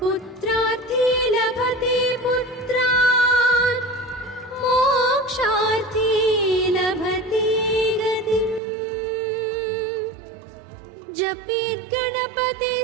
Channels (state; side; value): drops out; left; at 8.6 s